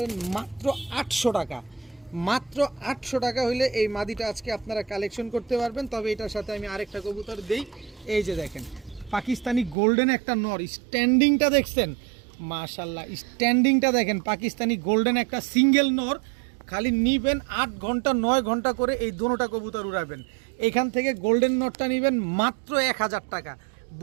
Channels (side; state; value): left; drops out; at 9.8 s